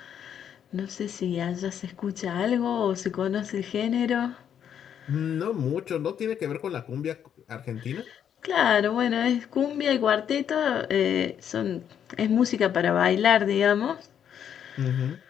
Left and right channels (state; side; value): quieter; right; 8.9 dB